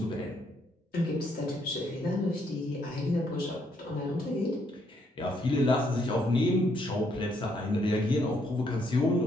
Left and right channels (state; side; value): normal; both; correlation 0.71